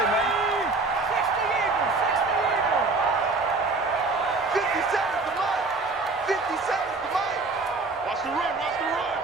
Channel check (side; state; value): left; quieter; 3.7 dB